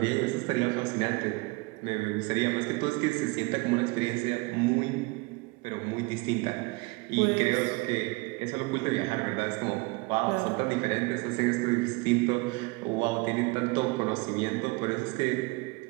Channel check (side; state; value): left; quieter; 25.6 dB